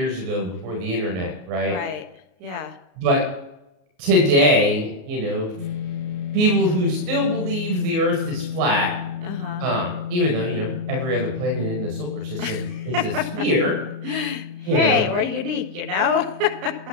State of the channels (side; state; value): left; late; 33 ms